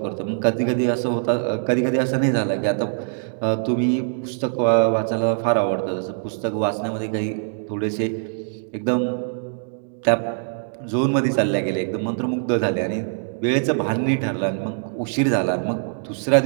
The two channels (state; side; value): silent; left; digital silence